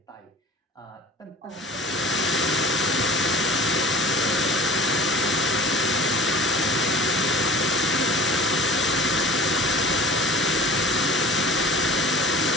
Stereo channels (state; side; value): normal; both; correlation 0.42